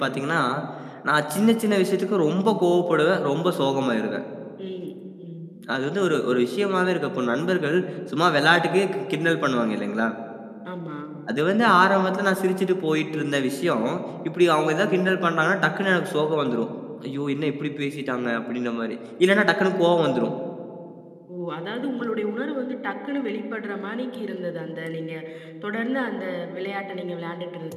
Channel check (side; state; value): both; identical; correlation 1.00